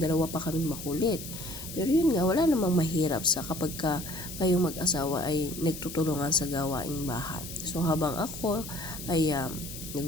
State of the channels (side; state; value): left; noise; hiss, 10 dB below the sound